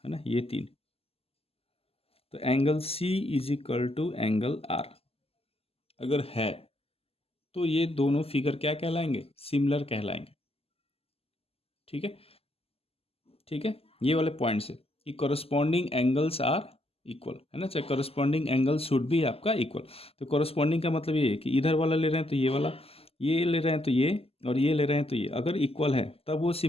है ना, ये 3, तो angle C is equal to angle R अगर है, तो ये दोनों फिगर क्या कहलाएंगे? सिमिलर कहलाएंगे। ठीक है, ठीक है, ये वाले पॉइंट्स है कि करस्पॉन्डिंग एंगल्स आर इक्वल, है ना, चाहे करस्पॉन्डिंग एंगल शुड भी आपका इक्वल। तो करस्पॉन्डिंग का मतलब ये है कि इधर वाला ले रहे हैं तो ये वाला, ये ले रहे हैं तो ये, और ये ले रहे हैं तो ये, अगर इक्वल है तब वो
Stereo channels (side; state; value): right; late; 0.29 ms